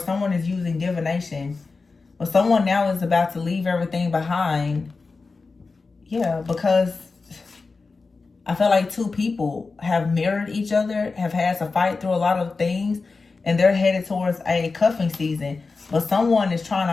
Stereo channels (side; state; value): right; quieter; 4.1 dB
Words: is using divination. But someone now is about to leave everything behind. Yeah, because I feel like 2 people have mirrored each other, have had to fight through a lot of things, and they're headed towards a cuffing season. But someone is trying